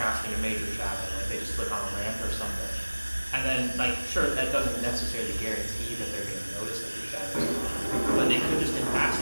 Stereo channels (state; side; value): inverted; both; correlation -1.00